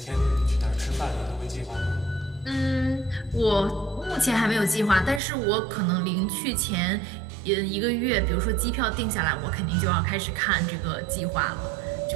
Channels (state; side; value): drops out; left; at 5.2 s